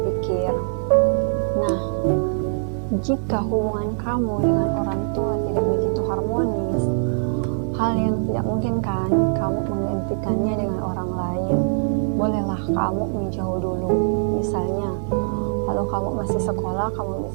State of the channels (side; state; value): left; silent; digital silence